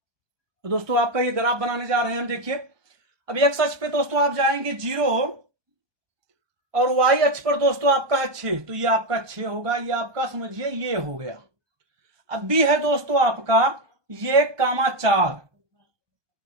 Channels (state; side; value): late; left; 1.2 ms